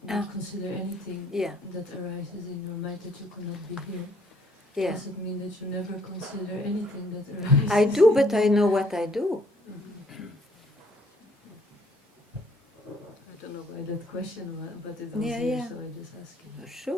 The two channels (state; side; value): normal; both; correlation 0.64